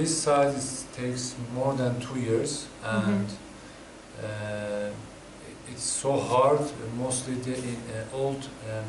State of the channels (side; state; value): both; identical; correlation 1.00